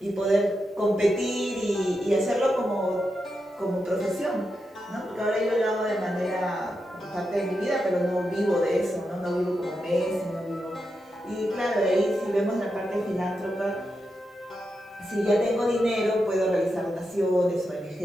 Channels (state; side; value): normal; both; correlation 0.87